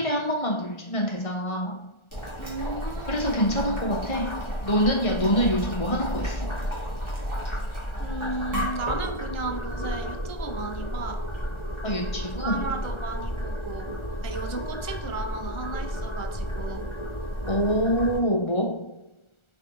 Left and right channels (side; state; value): right; late; 1.4 ms